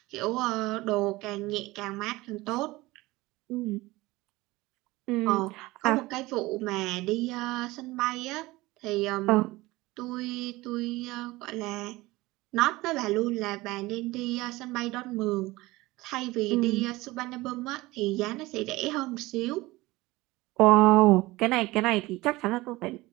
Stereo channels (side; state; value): left; quieter; 20.0 dB